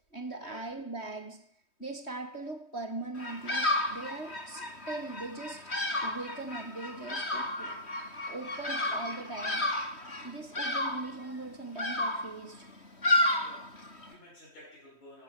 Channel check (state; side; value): late; right; 3.1 ms